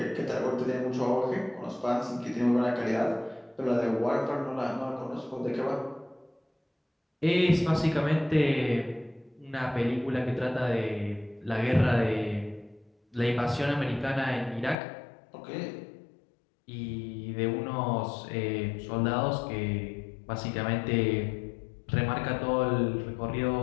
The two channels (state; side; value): drops out; right; at 14.8 s